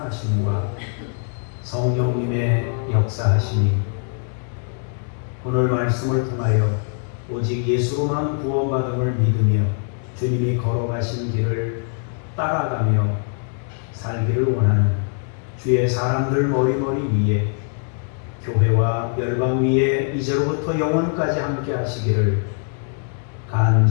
성령님의 역사하심이 오늘 말씀을 통하여 오직 예수로만 구원받음을 믿으며 주님이 걸어가신 길을 따라가며 살기를 원하는 주의 사람들 머리머리 위에 교회와 열방 위에 이제로부터 영원까지 함께 하시기를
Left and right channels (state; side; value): silent; right; 56 dB below the other